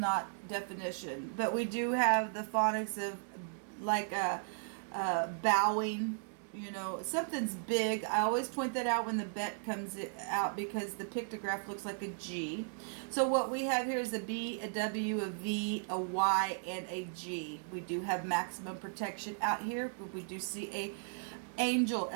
definition. But we do have the phonics of like bowing, something's big. I always point that out when the bet comes out because the pictograph looks like a G. So what we have here is a B, a W, a V, a Y, and a G. We do have maximum protection out here, but we do see a angel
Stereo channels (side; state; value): left; silent; digital silence